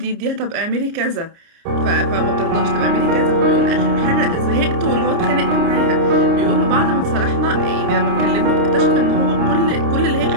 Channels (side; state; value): left; late; 29 ms